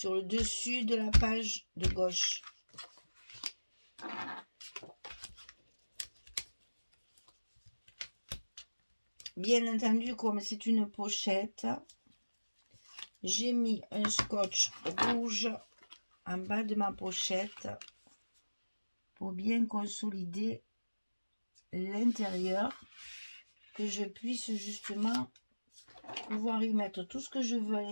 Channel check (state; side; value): inverted; both; correlation -1.00